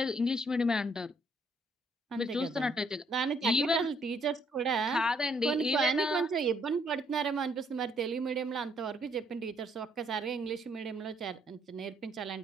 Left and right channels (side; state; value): both; normal; correlation 0.68